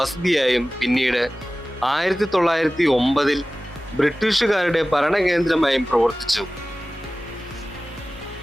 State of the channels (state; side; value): normal; both; correlation 0.97